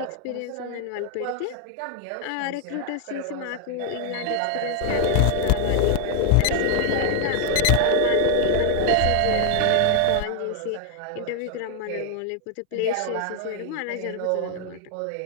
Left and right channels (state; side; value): different; both; correlation 0.00